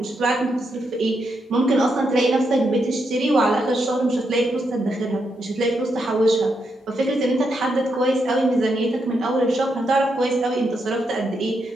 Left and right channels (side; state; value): both; normal; correlation 0.81